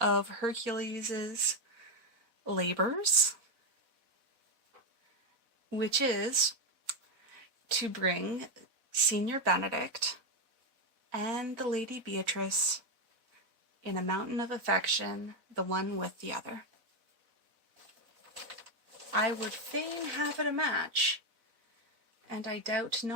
Hercules's labors, which is to bring Senior Benedict and the Lady Beatrice in a mountain of affection, the one with the other. I would fain have it a match, and I doubt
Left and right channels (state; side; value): late; left; 4.1 ms